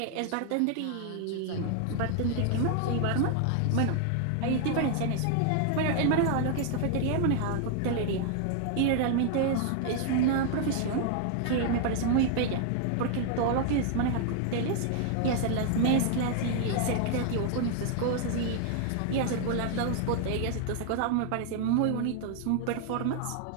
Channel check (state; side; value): different; both; correlation 0.00